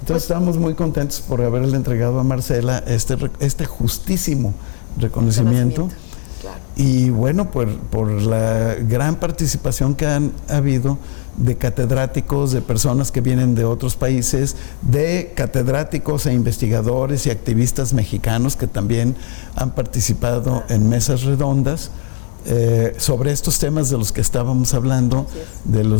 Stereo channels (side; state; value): right; silent; 56 dB below the other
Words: Pues, estamos muy contentos por haberle entregado a Marcela este justísimo reconocimiento. Claro. Y bueno, por la gran participación que han habido de catedráticos, de personas que vienen de otros países, de catedráticos e investigadores y activistas mexicanos que también han participado en mesas redondas sobre estos temas de los que estábamos hablando, de